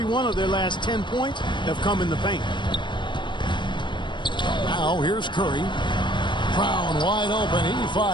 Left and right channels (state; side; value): late; right; 0.22 ms